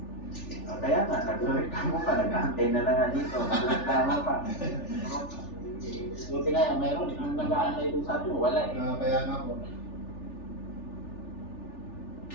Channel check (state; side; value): late; right; 3.4 ms